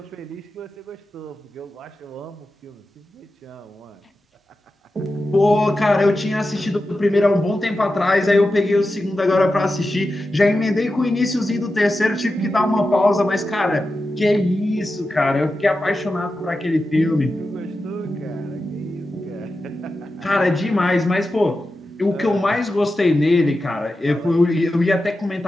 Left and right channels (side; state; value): both; normal; correlation 0.91